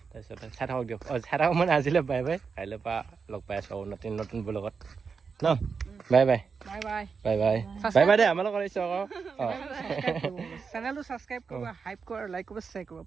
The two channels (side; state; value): left; quieter; 5.5 dB